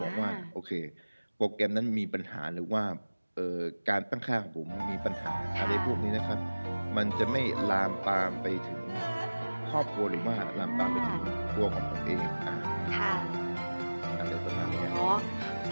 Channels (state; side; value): inverted; both; correlation -1.00